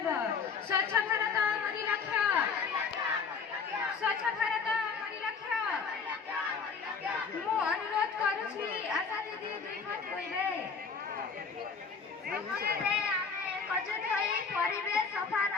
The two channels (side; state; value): right; quieter; 5.5 dB